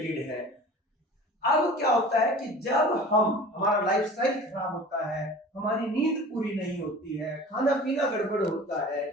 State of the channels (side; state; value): both; normal; correlation 0.41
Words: है। अब क्या होता है कि जब हमारा लाइफस्टाइल खराब होता है, हमारी नींद पूरी नहीं होती है, खाना पीना गड़बड़ होता है,